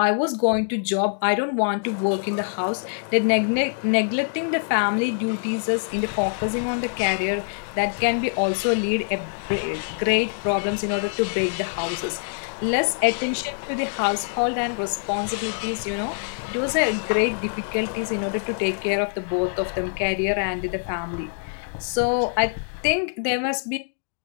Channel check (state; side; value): silent; right; digital silence